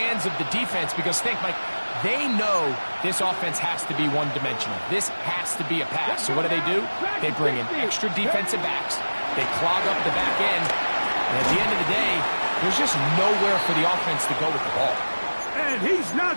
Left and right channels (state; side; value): inverted; both; correlation -1.00